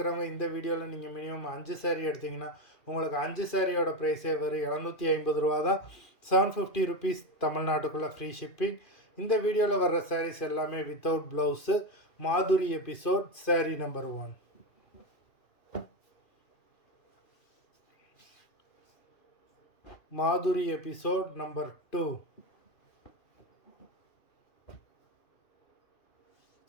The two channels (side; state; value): right; late; 2.4 ms